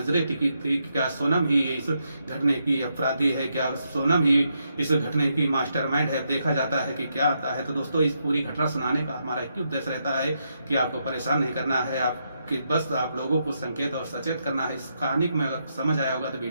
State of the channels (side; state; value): both; inverted; correlation -0.81